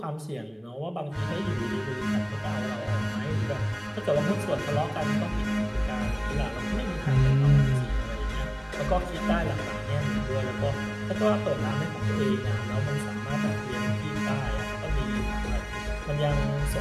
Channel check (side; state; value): both; identical; correlation 1.00